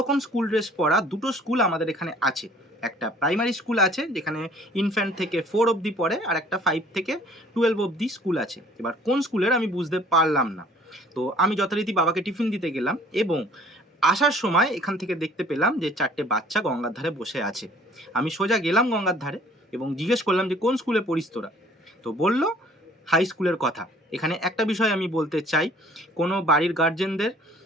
স্কুল ড্রেস পরা দুটো স্কুল আমাদের এখানে আছে। একটা প্রাইমারি স্কুল আছে যেখানে ইনফ্যান্ট থেকে 4 অবধি পড়ে, আর একটা 5 থেকে 12 অবধি স্কুল আছে। এবার কোন স্কুলের আমি বুঝতে পারলাম না। তো আমি যথারীতি বাবাকে টিফিন দিতে গেলাম এবং আসার সময় এখান থেকে দেখতে পেলাম যে 4টে বাচ্চা গঙ্গার ধারে বসে আছে। আমি সোজা গেলাম গঙ্গার ধারে এবং জিজ্ঞেস করলাম যে কোন স্কুলে পড়িস তোরা? তো বলল হাই স্কুলের কথা। এখানে একটা বিষয় আমি বলতে চাই, কোনো বাড়ির গার্জেনদের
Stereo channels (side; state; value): both; normal; correlation 0.54